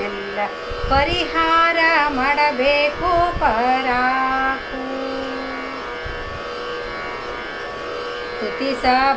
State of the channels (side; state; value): both; identical; correlation 1.00